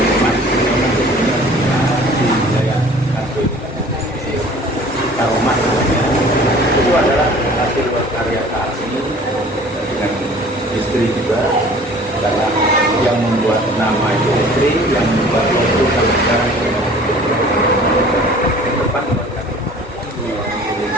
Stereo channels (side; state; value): both; normal; correlation 0.48